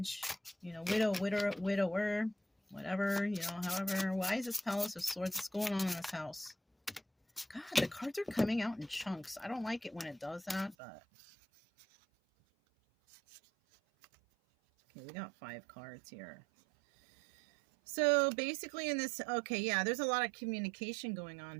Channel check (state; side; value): drops out; left; at 10.8 s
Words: widower, whatever, however. Why is this Palace of Swords? What's going on in this house? God, the cards are coming out in chunks. I don't like it when it does that, but... Okay, we got 5 cards here. So basically in this, okay, yeah, there's a lot of communication going on